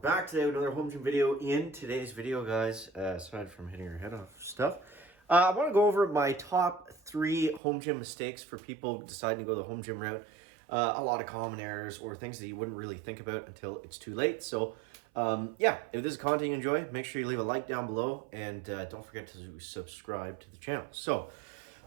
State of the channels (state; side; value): drops out; left; at 7.6 s